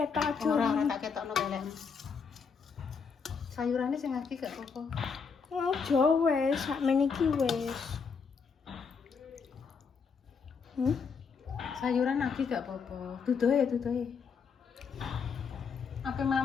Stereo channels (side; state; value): right; quieter; 5.7 dB